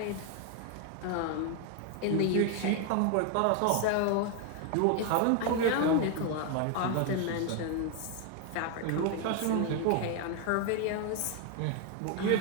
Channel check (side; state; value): both; different; correlation 0.01